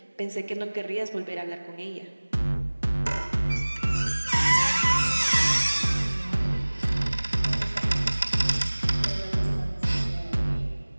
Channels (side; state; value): both; inverted; correlation -1.00